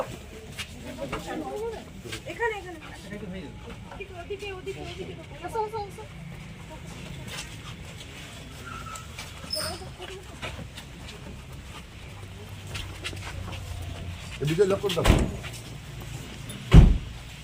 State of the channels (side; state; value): both; identical; correlation 1.00